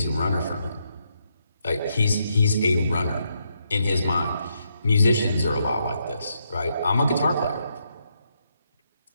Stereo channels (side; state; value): both; inverted; correlation -0.79